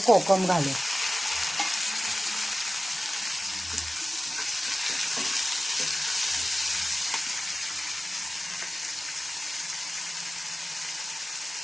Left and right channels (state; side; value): normal; both; correlation 0.95